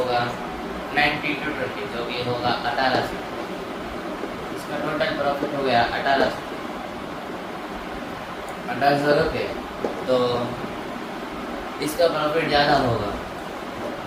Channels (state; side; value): identical; both; correlation 1.00